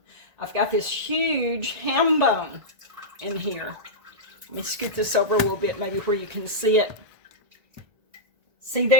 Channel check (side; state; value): left; late; 1.7 ms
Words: I've got this huge ham bone in here. Let me scoot this over a little bit, maybe where you can see it. See